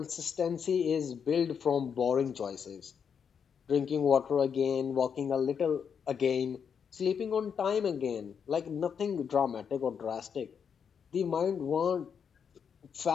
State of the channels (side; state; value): right; quieter; 7.1 dB